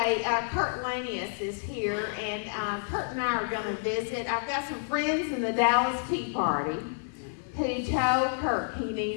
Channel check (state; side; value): silent; right; digital silence